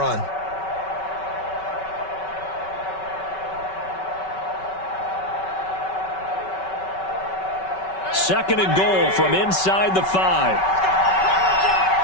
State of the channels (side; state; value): right; late; 5.3 ms